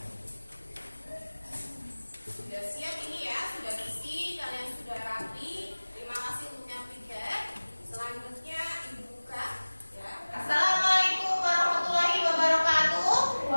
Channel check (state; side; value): inverted; both; correlation -1.00